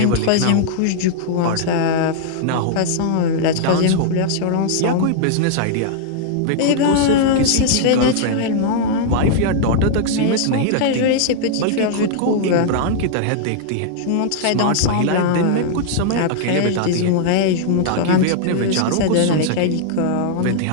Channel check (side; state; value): both; different; correlation -0.01